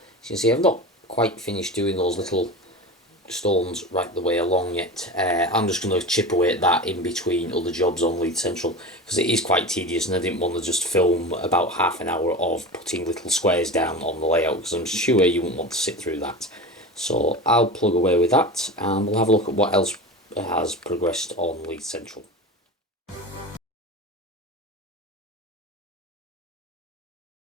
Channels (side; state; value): both; normal; correlation 0.29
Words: As you can see, I've not quite finished doing those little stones right the way along yet. I'm just going to chip away at that in between other jobs on Leith Central because it is quite tedious, and I didn't want to just film about half an hour of putting little squares down on the layout because I'm sure you wouldn't want to sit through that. So I'll plug away with that and we'll have a look at what else has progressed on Leith Central.